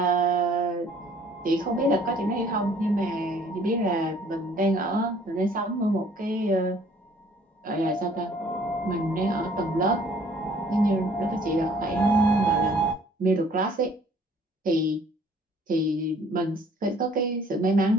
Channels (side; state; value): both; normal; correlation 0.57